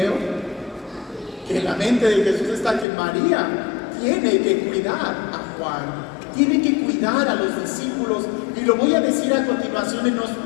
que en la mente de Jesús está que María tiene que cuidar a Juan, tiene que cuidar a los discípulos, y lo voy a decir a continuación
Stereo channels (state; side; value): drops out; right; at 2.9 s